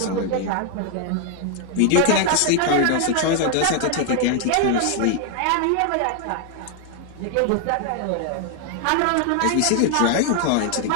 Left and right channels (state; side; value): different; both; correlation 0.00